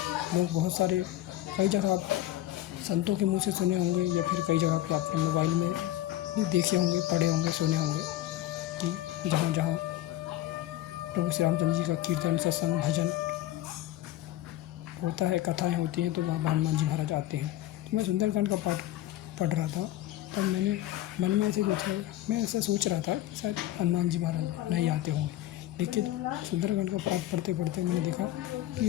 लोग बहुत सारे कई जगह आप संतों के मुंह से सुने होंगे, या फिर कई जगह पे आपने मोबाइल में भी देखे होंगे, पढ़े होंगे, सुने होंगे कि जहाँ प्रभु श्री रामचंद्र जी का कीर्तन, सत्संग, भजन होता है, कथाएँ होती हैं, तो वहाँ हनुमान जी महाराज आते हैं। तो मैं सुंदरकांड का पाठ पढ़ रहा था, तब मैंने मन में मैं ऐसा सोच रहा था कि शायद हनुमान जी महाराज नहीं आते होंगे। लेकिन सुंदरकांड का पाठ पढ़ते मैंने देखा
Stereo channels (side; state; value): right; quieter; 14.3 dB